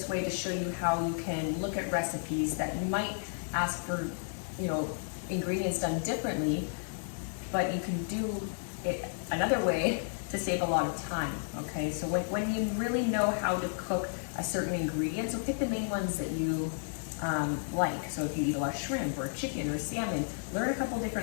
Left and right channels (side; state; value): right; silent; digital silence